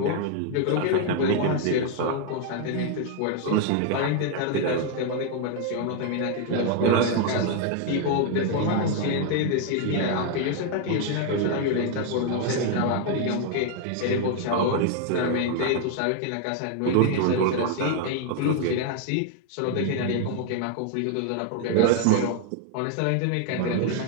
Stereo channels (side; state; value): both; different; correlation 0.00